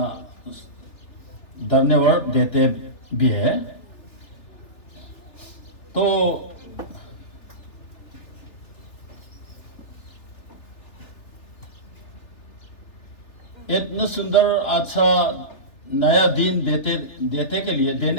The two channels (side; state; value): right; late; 3.2 ms